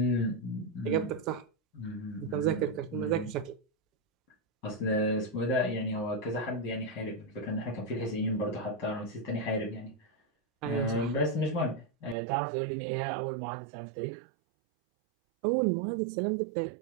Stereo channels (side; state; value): left; drops out; at 12.2 s